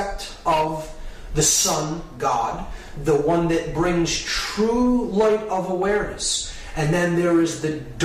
of the sun god, the one that brings true light of awareness. And then there is the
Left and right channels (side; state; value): both; identical; correlation 1.00